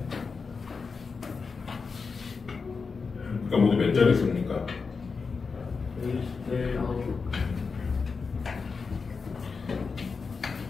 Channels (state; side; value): quieter; right; 4.9 dB